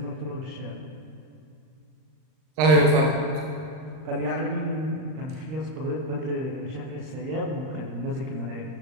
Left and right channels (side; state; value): left; late; 39 ms